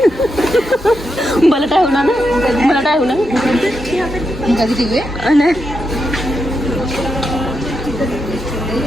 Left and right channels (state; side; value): normal; both; correlation 0.85